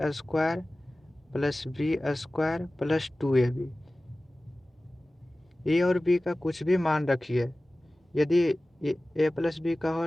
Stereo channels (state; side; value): normal; both; correlation 0.97